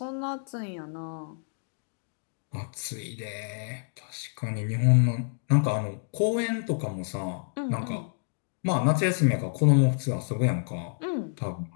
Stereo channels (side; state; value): right; silent; digital silence